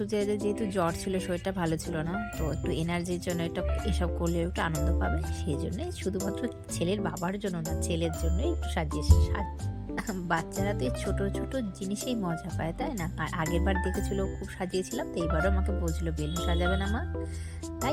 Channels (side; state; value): both; identical; correlation 1.00